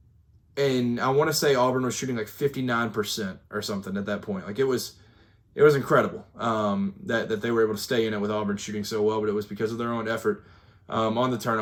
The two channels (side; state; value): both; identical; correlation 1.00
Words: and I want to say Auburn was shooting like 59% or something at that point. Like it was incredible that they were able to stay in it with Auburn shooting so well, but it was because of their own effort on the